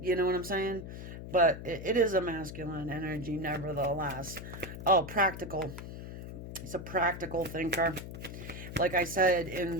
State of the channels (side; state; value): left; noise; hum, 10 dB below the sound